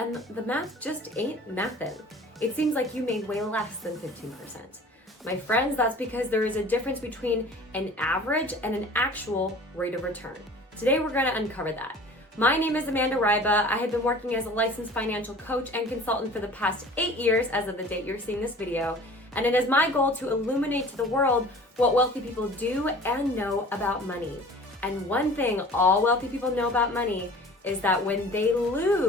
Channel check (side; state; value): both; normal; correlation 0.45